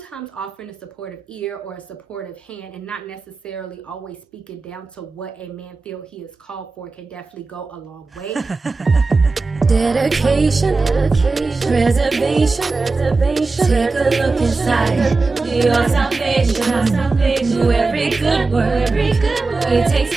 offering a supportive ear or a supportive hand and not necessarily always speaking down to what a man feels he is called for can definitely go a long way. Dedication, preservation, take a look inside your salvation. Do every good work, it takes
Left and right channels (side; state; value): left; quieter; 3.8 dB